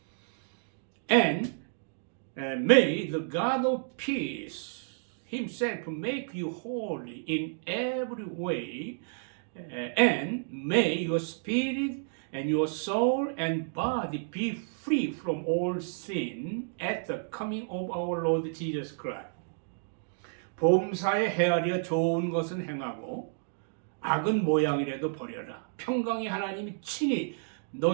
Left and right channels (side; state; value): left; silent; digital silence